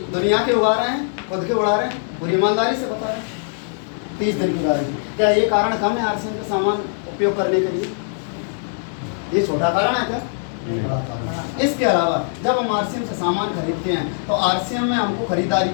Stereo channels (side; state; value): right; silent; 56 dB below the other